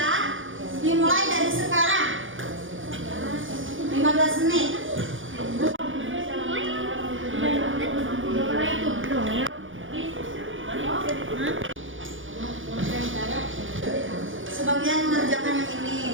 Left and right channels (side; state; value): left; late; 0.57 ms